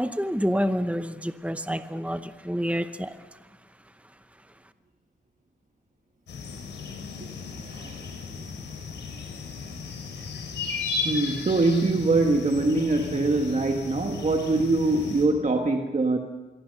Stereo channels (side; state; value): both; normal; correlation 0.69